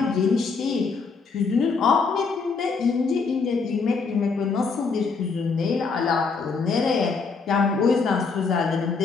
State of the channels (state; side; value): quieter; right; 4.8 dB